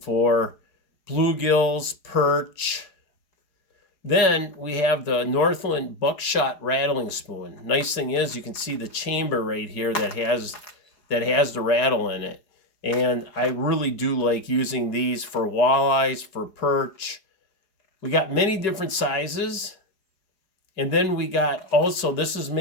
for bluegills, perch. Then we have the Northland Buckshot rattling spoon. Nice thing is you can see the chamber right here that has the rattle in it. And I really do like using these for walleyes, for perch. We got many different sizes. And then we got also, this is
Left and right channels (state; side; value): late; right; 4.8 ms